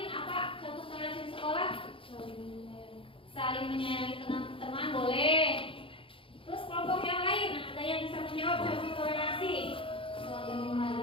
apa contoh toleransi di sekolah? Saling menyayangi teman-teman boleh. Terus kelompok yang lain, ada yang bisa menjawab contoh toleransi? Saling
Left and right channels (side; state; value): right; late; 0.26 ms